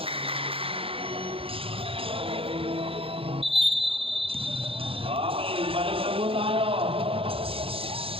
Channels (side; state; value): left; late; 0.27 ms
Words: Okay, balik na po tayo.